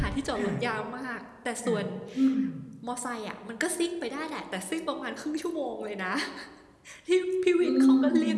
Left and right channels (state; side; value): identical; both; correlation 1.00